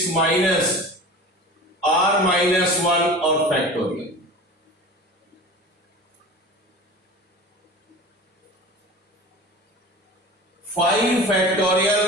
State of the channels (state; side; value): normal; both; correlation 0.36